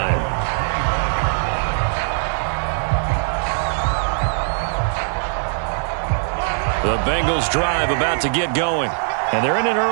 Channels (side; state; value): left; silent; 60 dB below the other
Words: The Bengals drive about to get going. And they're in an